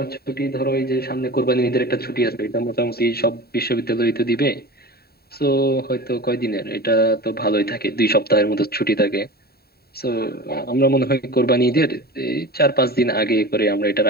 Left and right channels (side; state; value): right; late; 0.45 ms